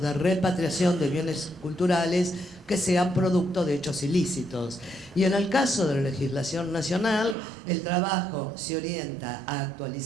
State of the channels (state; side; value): drops out; left; at 7.4 s